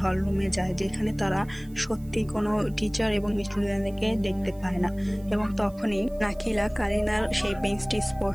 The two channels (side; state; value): right; noise; hiss, 26 dB below the sound